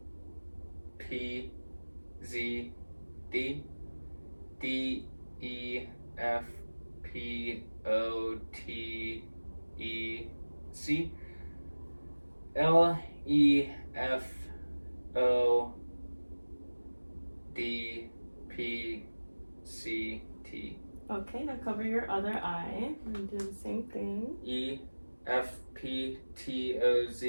P, Z, D, D, E, F, P, O, T, E, C, L, E, F, O, D, P, C, T. Okay, now cover your other eye and do the same thing. E, F, P, T, O,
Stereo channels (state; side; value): inverted; both; correlation -1.00